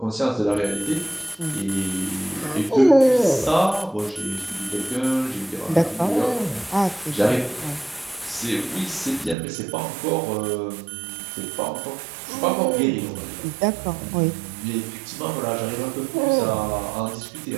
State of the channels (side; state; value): left; drops out; at 9.3 s